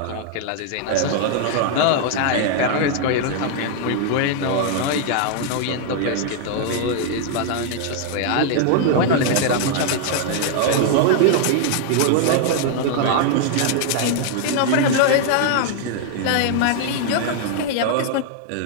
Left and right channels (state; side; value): different; both; correlation 0.00